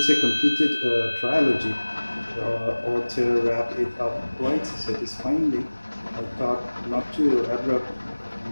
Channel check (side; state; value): both; inverted; correlation -1.00